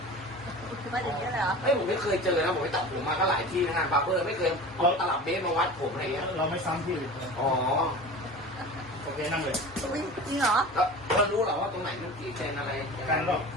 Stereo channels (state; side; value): normal; both; correlation 0.36